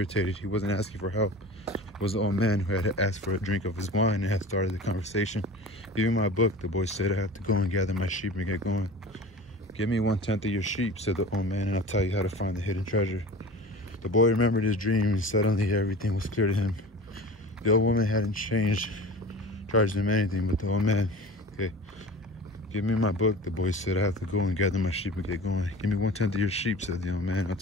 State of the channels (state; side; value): normal; both; correlation 0.38